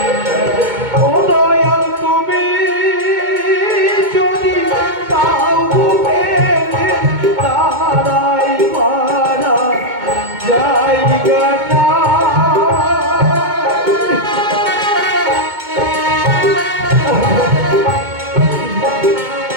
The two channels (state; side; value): late; left; 2.2 ms